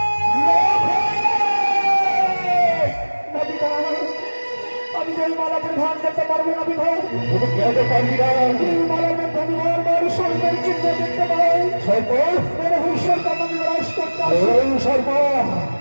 না পিতা, আমি যে এই মালা পরিধান করতে পারবো না পিতা। তুমি কেন পারবি না এই মালার মধ্যে আমি বারবার স্বর্গের চিহ্ন দেখতে পাই। সর্প বড় হুঁশিয়ার কাম আমি বিরাজ করতে আসি। ওই সর্প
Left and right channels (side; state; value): both; inverted; correlation -1.00